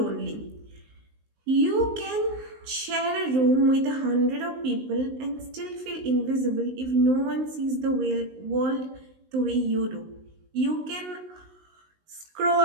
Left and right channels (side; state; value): left; late; 19 ms